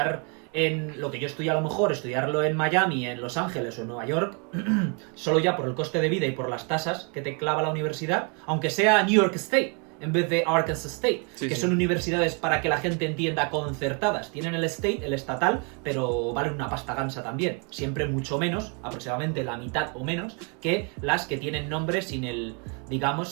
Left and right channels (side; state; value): left; quieter; 36.1 dB